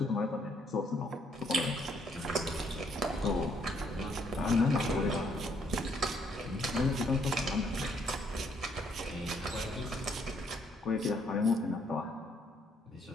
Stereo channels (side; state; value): both; normal; correlation 0.69